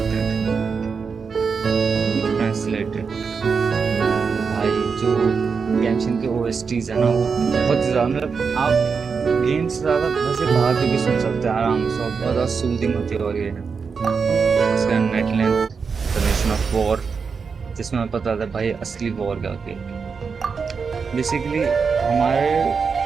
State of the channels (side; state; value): left; quieter; 5.5 dB